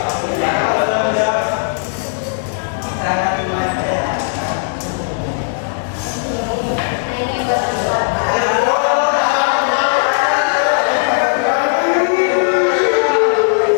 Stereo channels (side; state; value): right; silent; digital silence